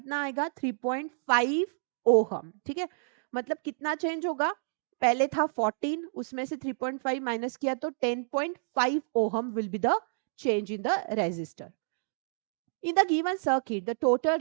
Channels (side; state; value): left; silent; digital silence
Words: आएगा? 3.5 ओहम. ठीक है. मतलब कितना चेंज होगा? पहले था 14, उसमें से 3.5 माइनस किया तो 10.5 ohm will be the change in the resistor. In the given circuit, the total